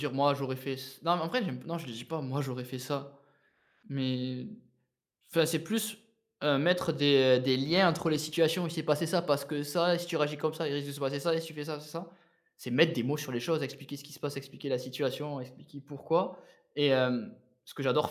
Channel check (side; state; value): both; identical; correlation 1.00